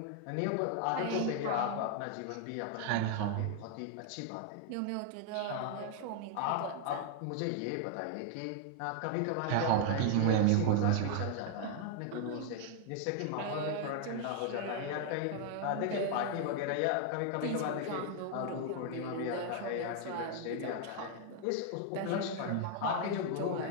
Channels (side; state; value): both; different; correlation 0.00